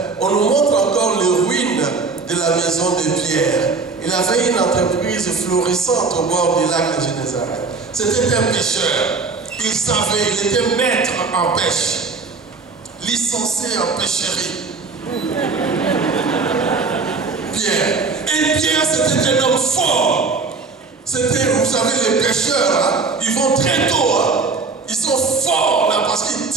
on nous montre encore les ruines de la maison de Pierre. Il avait une entreprise florissante au bord du lac de Génézareth. C'était un pêcheur. Il savait, il était maître en pêche. Licencié en pêcherie. Pierre. Et Pierre, c'était un homme fort. C'était, vous savez, les pêcheurs, ils vont très tôt. Ils sont forts là parce qu'ils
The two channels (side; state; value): left; quieter; 4.4 dB